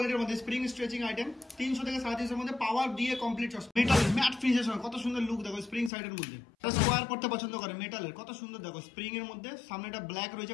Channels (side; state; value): right; drops out; at 5.9 s